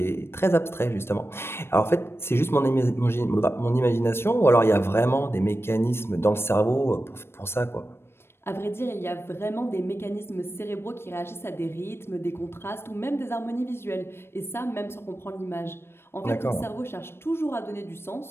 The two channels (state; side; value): late; right; 0.12 ms